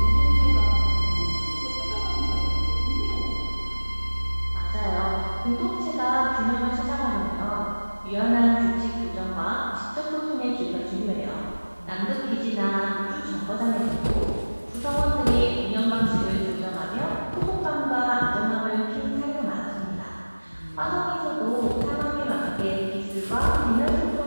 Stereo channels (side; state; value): both; inverted; correlation -1.00